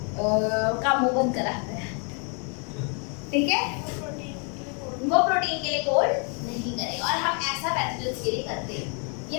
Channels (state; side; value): quieter; right; 38.0 dB